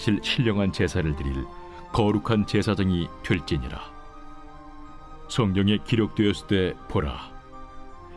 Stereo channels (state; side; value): identical; both; correlation 1.00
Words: 신령한 제사를 드릴 거룩한 제사장이 될지니라. 성경에 기록되었을 때 보라,